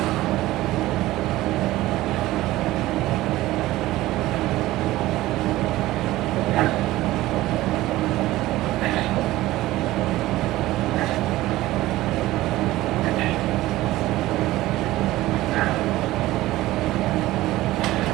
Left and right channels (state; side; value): quieter; left; 16.8 dB